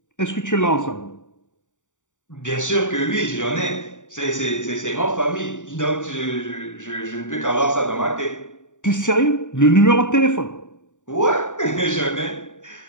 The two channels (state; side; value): late; right; 0.86 ms